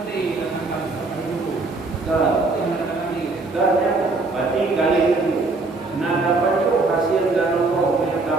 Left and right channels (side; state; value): left; quieter; 3.6 dB